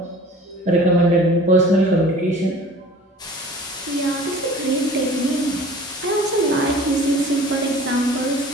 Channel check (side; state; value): both; normal; correlation 0.45